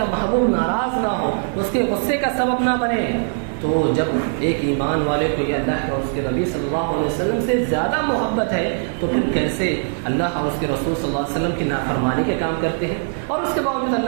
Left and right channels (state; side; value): silent; left; 59 dB below the other